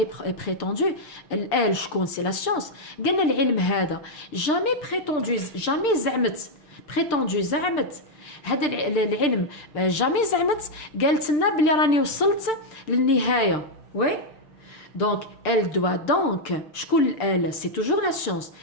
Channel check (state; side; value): late; right; 6.7 ms